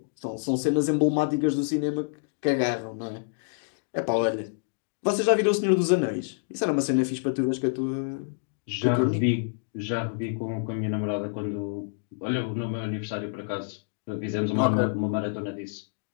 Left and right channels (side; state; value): right; silent; digital silence